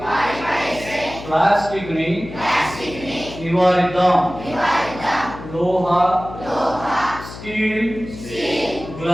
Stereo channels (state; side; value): noise; left; hum, 13 dB below the sound